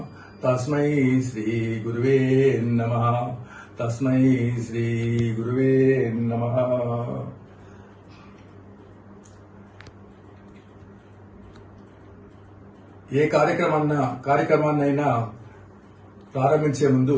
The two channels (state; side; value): identical; both; correlation 1.00